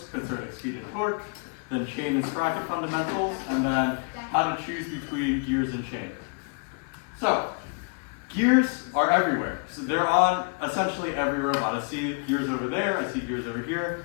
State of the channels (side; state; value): right; quieter; 37.0 dB